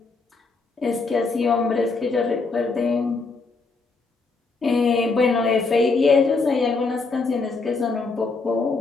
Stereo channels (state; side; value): quieter; right; 4.0 dB